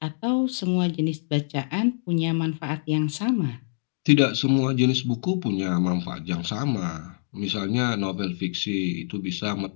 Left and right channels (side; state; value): right; silent; digital silence